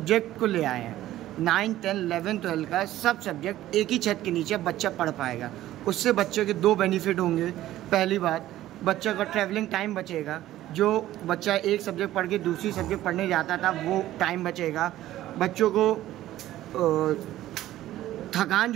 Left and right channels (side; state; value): left; quieter; 14.3 dB